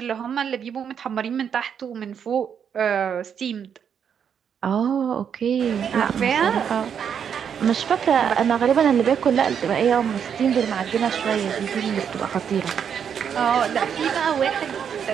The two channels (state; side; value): quieter; left; 7.8 dB